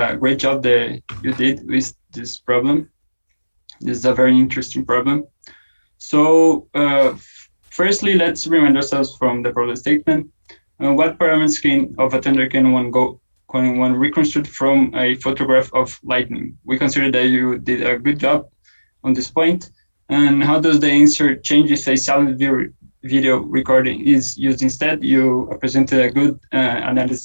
great job that you did with this problem. This is a very interesting problem. So firstly, let's remind ourselves from the problem statement. What parameters of a thunder can one reconstruct from a photograph of lightning? We consider that you did a good job on this point. And how does the answer change if a silent video recording is used instead? You presented a good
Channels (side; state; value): both; inverted; correlation -1.00